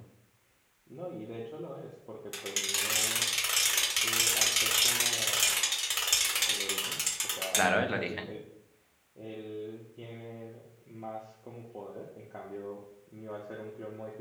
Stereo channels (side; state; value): both; identical; correlation 1.00